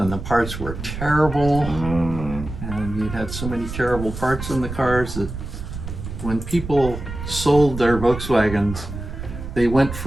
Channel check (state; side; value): noise; right; rumble, 8 dB below the sound